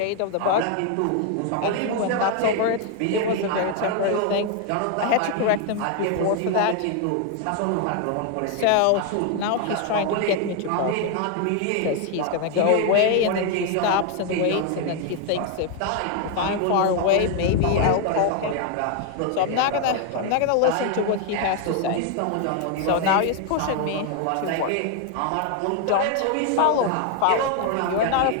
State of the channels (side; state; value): both; different; correlation 0.00